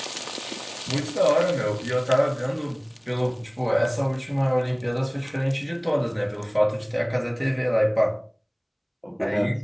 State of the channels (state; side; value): identical; both; correlation 1.00